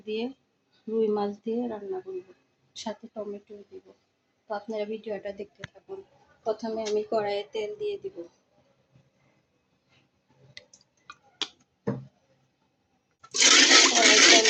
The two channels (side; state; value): both; identical; correlation 1.00